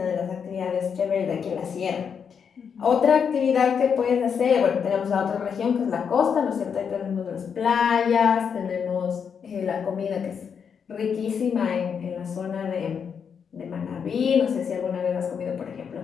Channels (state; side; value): quieter; right; 6.9 dB